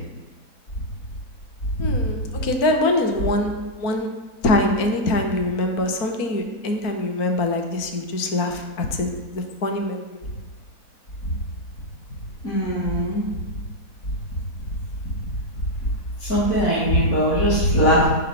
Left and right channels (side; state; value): right; late; 4.4 ms